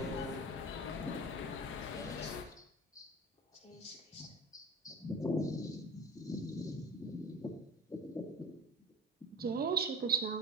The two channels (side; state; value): both; normal; correlation 0.34